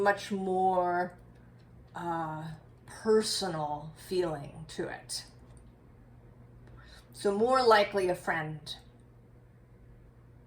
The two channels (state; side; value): identical; both; correlation 1.00